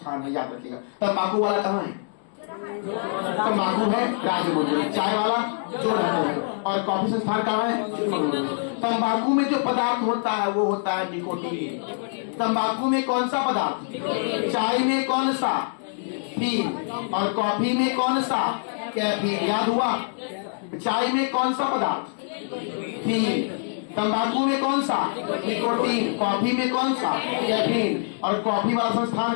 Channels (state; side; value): silent; right; digital silence